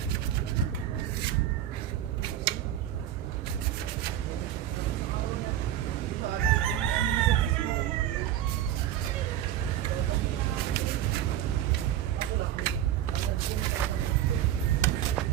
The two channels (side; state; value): left; quieter; 11.5 dB